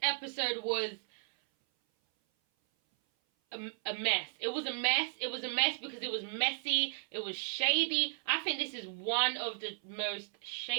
episode was a mess. It was a mess. It was a mess because it was messy. It was shady. I think this is one of the most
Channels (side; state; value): left; silent; 55 dB below the other